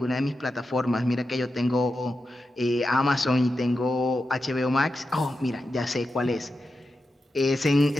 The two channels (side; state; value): both; normal; correlation 0.90